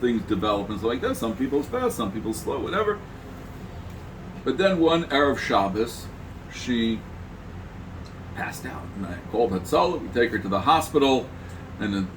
develop and stuff like that. Some people's fast, some people's slow, whatever. But then one Erev Shabbos, she passed out. And I called Hatzalah. We take her to the hospital. And it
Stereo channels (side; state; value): both; identical; correlation 1.00